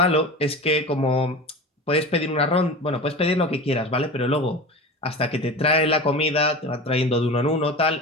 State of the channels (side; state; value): both; normal; correlation 0.31